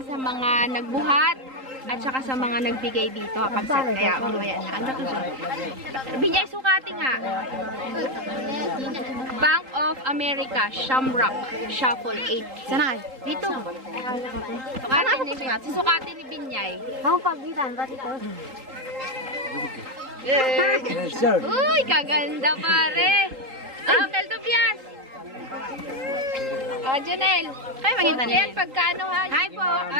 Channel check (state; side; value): late; left; 3.8 ms